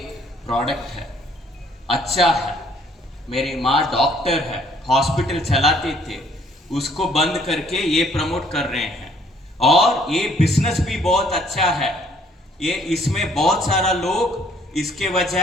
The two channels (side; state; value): both; normal; correlation 0.62